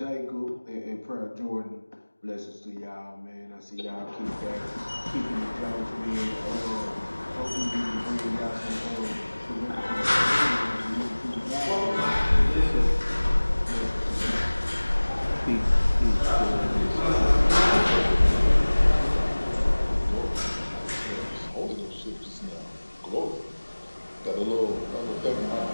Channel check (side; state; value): both; inverted; correlation -1.00